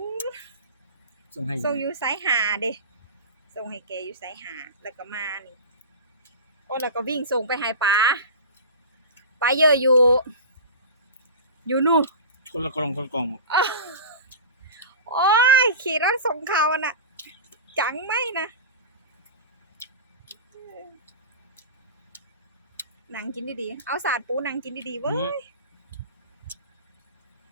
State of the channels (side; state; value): both; inverted; correlation -0.30